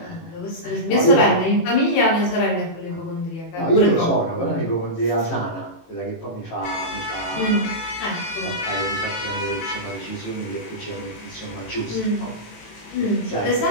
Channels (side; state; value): right; late; 18 ms